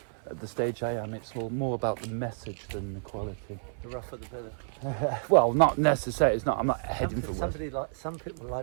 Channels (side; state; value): left; silent; 58 dB below the other